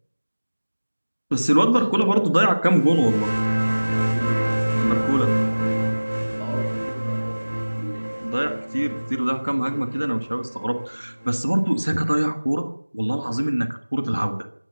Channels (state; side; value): inverted; both; correlation -1.00